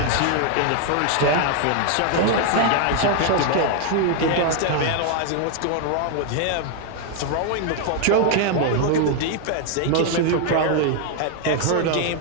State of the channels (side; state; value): both; different; correlation 0.00